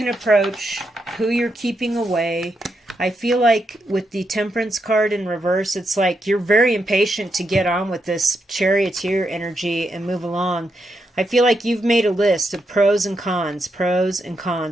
approach, who you're keeping away. I feel like with the Temperance card in reverse, it's like you're very impatient to get on with this charioteer energy and move along. I feel like you've made a list of pros and cons,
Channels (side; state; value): both; normal; correlation 0.82